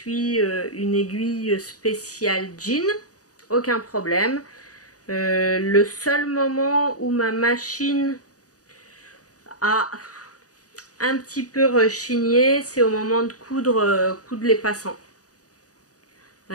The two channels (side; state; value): right; late; 0.67 ms